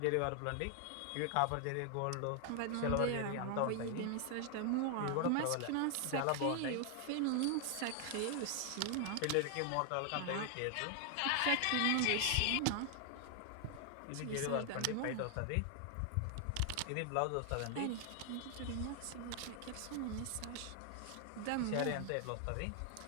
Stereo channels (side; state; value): both; different; correlation 0.00